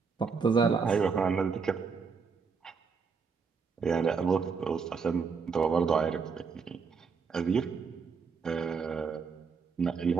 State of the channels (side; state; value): left; quieter; 5.4 dB